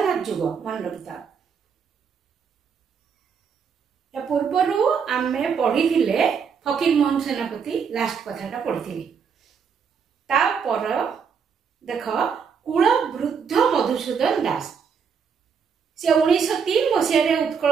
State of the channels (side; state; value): left; quieter; 6.5 dB